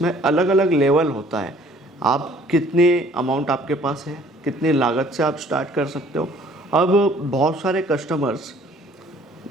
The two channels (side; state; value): both; normal; correlation 0.56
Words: अलग अलग लेवल होता है। आप कितनी अमाउंट आपके पास है, कितनी लागत से आप स्टार्ट कर सकते हो। अब बहुत सारे कस्टमर्स